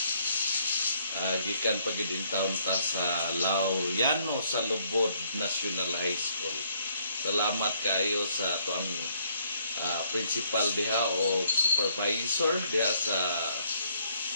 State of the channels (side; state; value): both; inverted; correlation -0.68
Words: Gikan pagidin taon ta sa Laureano sa Lubod National High School. Salamat kayo sa tuang principal diha o supervisor diha sa